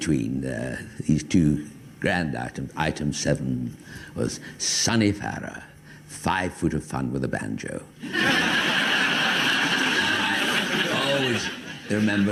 these two grand items, item 7 was Sonny Farrer, 5 foot of fun with a banjo. Always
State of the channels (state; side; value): identical; both; correlation 1.00